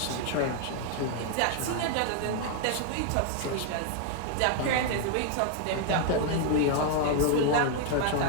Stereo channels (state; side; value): different; both; correlation 0.00